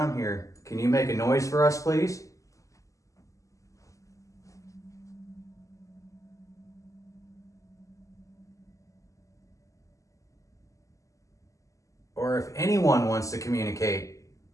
here, can you make a noise for us, please? Or if anyone wants to communicate,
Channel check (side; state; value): right; late; 0.16 ms